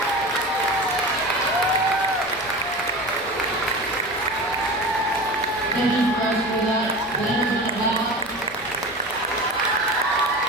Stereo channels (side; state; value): right; noise; rumble, 27 dB below the sound